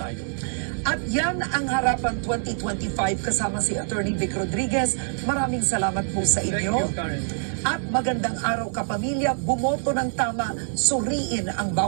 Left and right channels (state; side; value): silent; left; digital silence